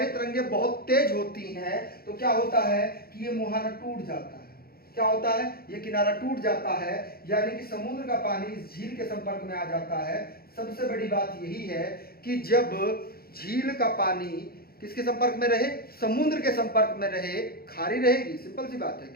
तरंगे बहुत तेज होती हैं तो क्या होता है कि ये मुहाना टूट जाता है। क्या होता है, ये किनारा टूट जाता है, यानी कि समुद्र का पानी इस झील के संपर्क में आ जाता है। सबसे बड़ी बात यही है कि जब झील का पानी किसके संपर्क में रहे, समुद्र के संपर्क में रहे, खारी रहेगी, सिंपल सी बात है।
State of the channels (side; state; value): right; late; 0.44 ms